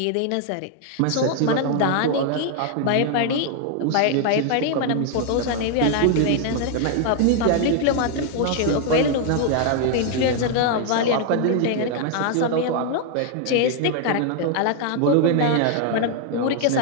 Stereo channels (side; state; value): both; different; correlation 0.00